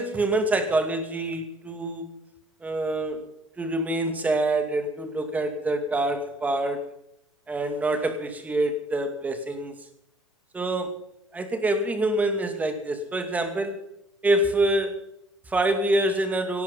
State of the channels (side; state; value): both; normal; correlation 0.61